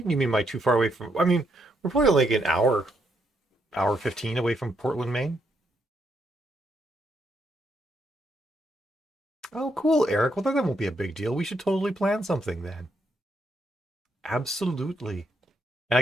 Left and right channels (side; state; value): both; normal; correlation 0.77